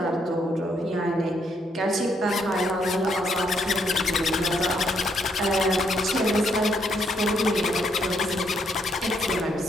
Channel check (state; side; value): normal; both; correlation 0.73